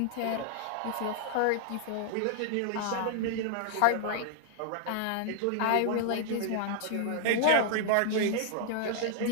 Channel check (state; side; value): different; both; correlation 0.00